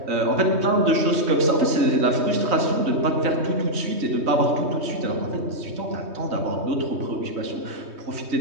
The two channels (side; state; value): left; late; 3.2 ms